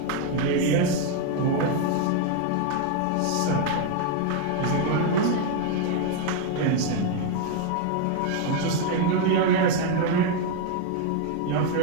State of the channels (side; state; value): both; different; correlation 0.00